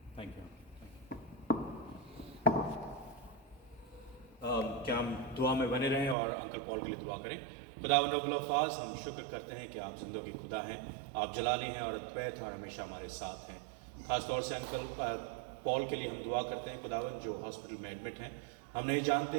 Thank you. क्या हम दुआ में बने रहें और अंकल पॉल के लिए दुआ करें। खुदावंद रब्बुल अल्फाज, हम शुक्र करते हैं कि आप ज़िंदगी खुदा हैं, आप जलाली हैं और अद्वैत हैं और हमेशा हमारे साथ हैं। ख़ास तौर से अंकल पॉल के लिए हम दुआ करते हैं खुदावंद, जो हॉस्पिटल में एडमिट हैं। हम नहीं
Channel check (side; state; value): left; drops out; at 6.2 s